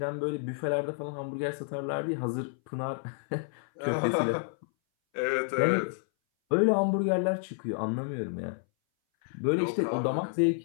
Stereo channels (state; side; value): silent; right; 58 dB below the other